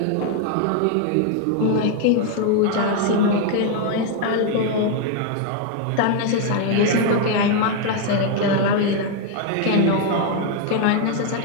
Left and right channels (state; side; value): different; both; correlation 0.01